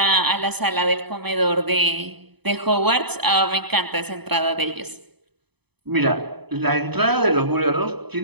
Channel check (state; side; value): late; left; 0.98 ms